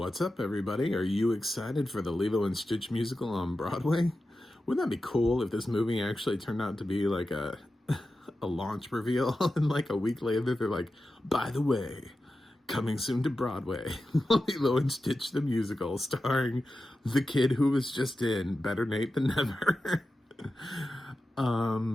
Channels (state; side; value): normal; both; correlation 0.92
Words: up, everybody? Are you excited for the Lilo and Stitch musical on Broadway? Wouldn't that be cool if this movie actually turned out to be like a a launch reveal and like a week later they're like, by the way, coming soon to Broadway, Lilo and Stitch the musical starring the kid who was just in Better Nate Than Never.